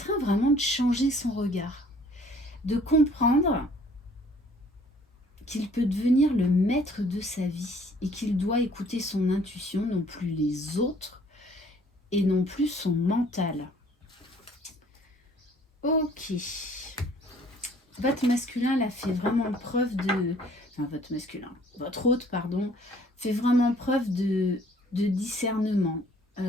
vraiment de changer son regard, de comprendre qu'il peut devenir le maître de sa vie et qu'il doit écouter son intuition, non plus les autres et non plus son mental. Ok. Votre masculin là fait vraiment preuve de... Enfin, votre hôte, pardon, fait vraiment preuve de discernement,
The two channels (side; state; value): both; normal; correlation 0.57